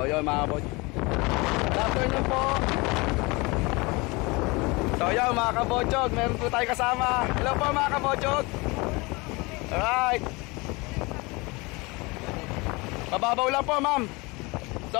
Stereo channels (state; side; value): quieter; right; 25.3 dB